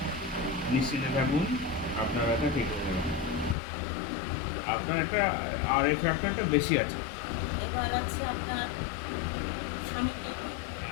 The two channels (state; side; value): drops out; right; at 3.6 s